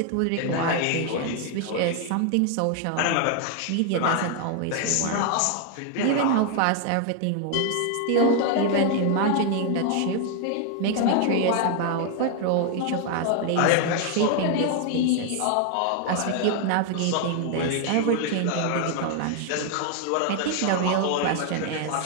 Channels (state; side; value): different; both; correlation 0.00